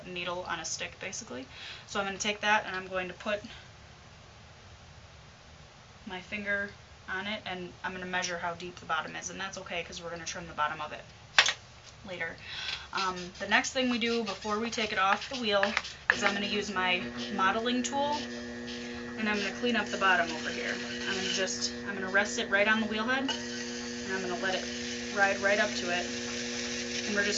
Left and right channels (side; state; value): both; identical; correlation 1.00